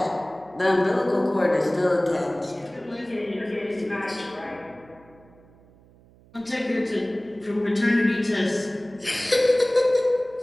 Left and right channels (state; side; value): noise; right; hum, 27 dB below the sound